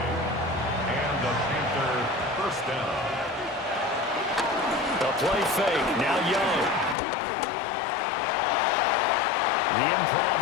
And the Panther 1st down. The play fake. Now Young. The improv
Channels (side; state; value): right; drops out; at 7.0 s